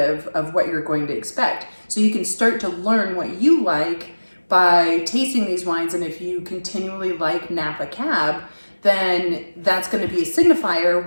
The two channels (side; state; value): both; inverted; correlation -1.00